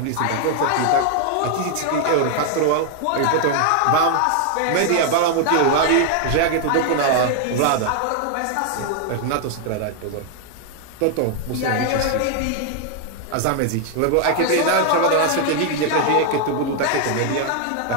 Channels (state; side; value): different; both; correlation 0.00